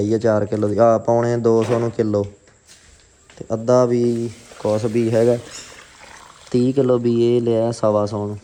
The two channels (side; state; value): both; identical; correlation 1.00